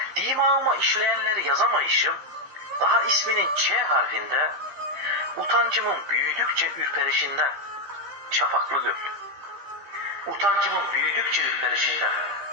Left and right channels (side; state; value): left; late; 15 ms